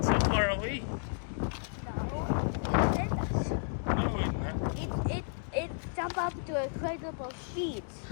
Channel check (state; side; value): silent; right; digital silence